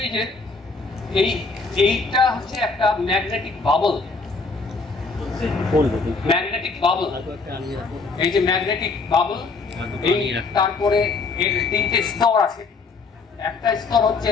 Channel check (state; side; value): quieter; right; 4.1 dB